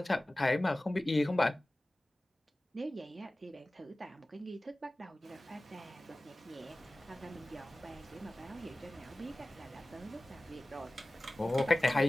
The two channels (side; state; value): both; normal; correlation 0.97